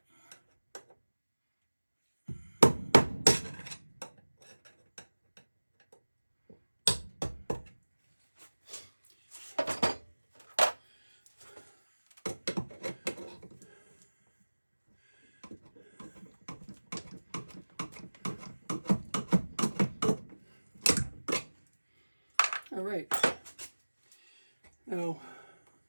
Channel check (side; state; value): both; inverted; correlation -1.00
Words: All right. Now,